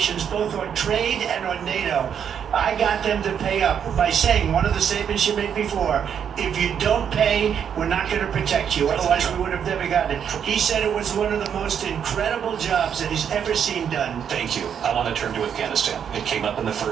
both on trade and on NATO. I got them to pay up by saying, one of the statements you made before, if you don't pay, we're not going to protect you. Otherwise, we would have never gotten it. He said it was one of the most incredible jobs that he's ever seen done. Thank you. I want to turn to Afghanistan. It came up in the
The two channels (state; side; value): quieter; left; 8.1 dB